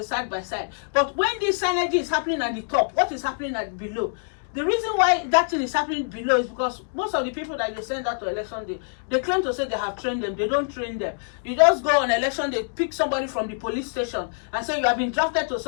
side by side. But when this synergy is happening at the top, what is happening at below? The reason why that thing is happening below is because most of the people that they send out to election day, they claim to say they have trained them. They don't train them. You just go on election day, pick somebody from the police station and say you have been drafted to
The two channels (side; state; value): right; silent; digital silence